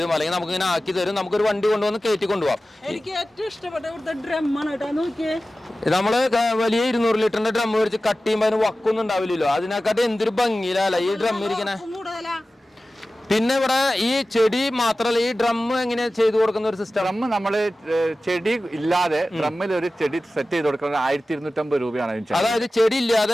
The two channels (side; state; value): both; normal; correlation 0.96